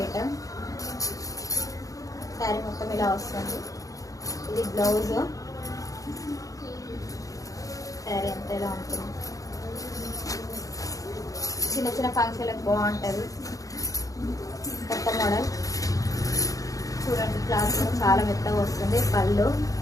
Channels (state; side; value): late; right; 0.17 ms